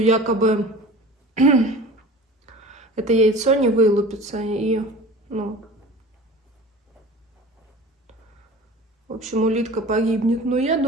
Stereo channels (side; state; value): both; normal; correlation 0.39